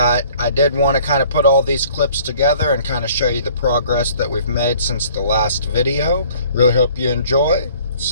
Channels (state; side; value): inverted; both; correlation -0.54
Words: I did want to kind of put all these clips together and kind of show you the progress that we've made since the last video. Really hope you enjoy.